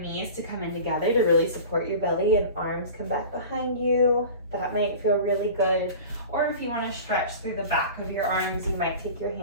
to come in together to really support your belly and arms come back behind you, that might feel really good. Or if you want to stretch through the back of your arms, you might take your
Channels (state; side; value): inverted; both; correlation -0.37